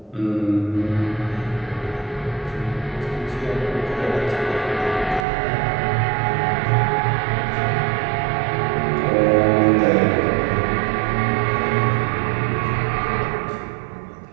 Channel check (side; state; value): left; drops out; at 5.2 s